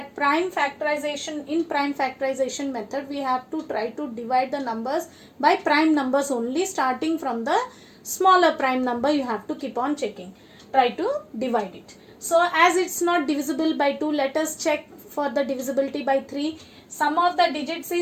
prime factorization method, we have to try to divide the numbers by prime numbers only. Starting from the smaller prime number, you have to keep on checking. Try to divide it. So as it's not divisible by 2, let us check for the divisibility by 3. Sum of the digits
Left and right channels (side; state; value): both; identical; correlation 1.00